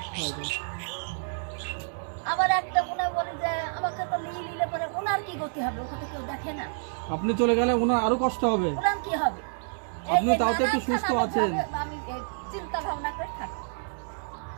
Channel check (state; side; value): silent; left; digital silence